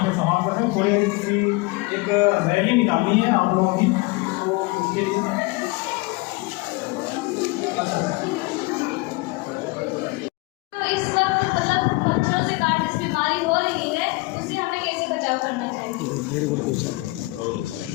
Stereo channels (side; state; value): right; quieter; 24.3 dB